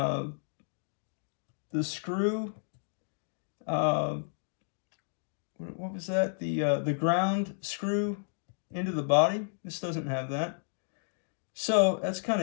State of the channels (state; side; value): silent; right; digital silence